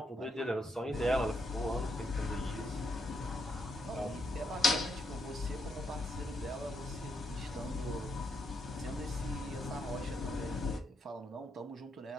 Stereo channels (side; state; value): both; normal; correlation 0.79